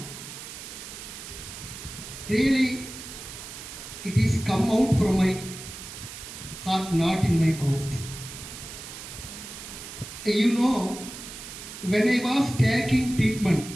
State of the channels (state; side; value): noise; right; hiss, 12 dB below the sound